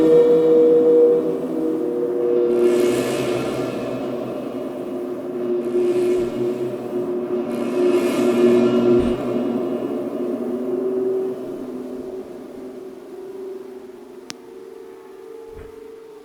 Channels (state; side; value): identical; both; correlation 1.00